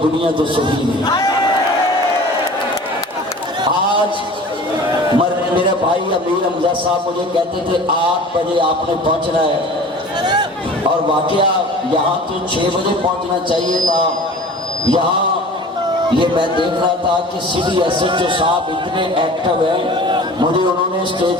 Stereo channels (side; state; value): both; normal; correlation 0.42